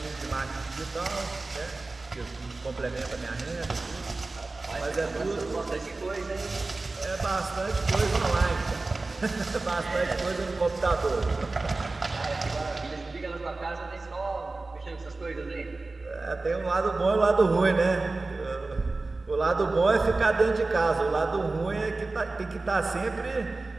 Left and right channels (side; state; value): left; quieter; 3.4 dB